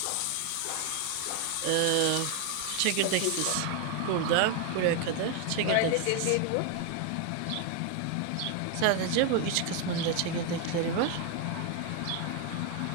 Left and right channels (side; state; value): both; different; correlation 0.01